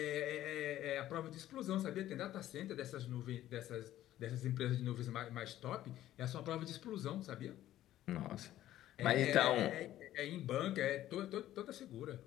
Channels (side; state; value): right; quieter; 13.4 dB